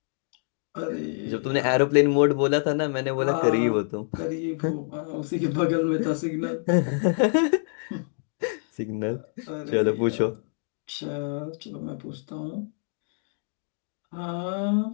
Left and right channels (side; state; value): right; silent; digital silence